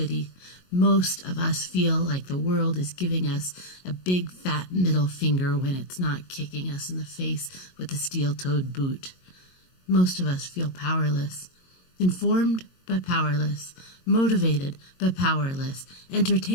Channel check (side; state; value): right; late; 22 ms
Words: Most of us feel like the world is giving us a big fat middle finger when it's not kicking us in the face with a steel-toed boot. Most of us feel powerless, informed but powerless, motivated but powerless,